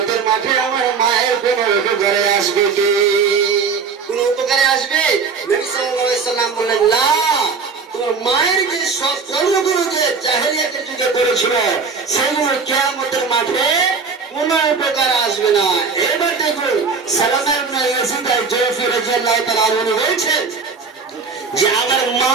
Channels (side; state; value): left; quieter; 5.2 dB